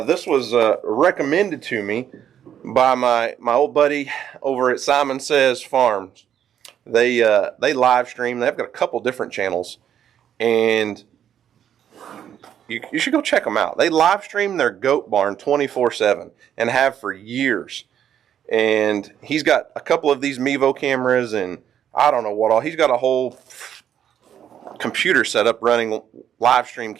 was recommended to me by my old buddy over at Simon Says Farms. They live stream. They've got a couple different channels, and you should go check them out. They live stream their goat barn 24/7 and have for years. And he's got a couple of these Mevo cameras, and I don't know what all. He's got a whole computer set up running live stream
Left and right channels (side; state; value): left; quieter; 9.6 dB